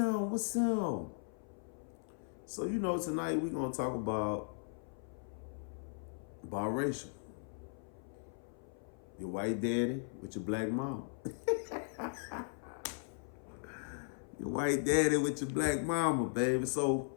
What's up? So tonight we're gonna talk about biracial. Your white daddy with your black mom. Your white daddy with your black mama, baby. So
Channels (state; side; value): silent; right; 53 dB below the other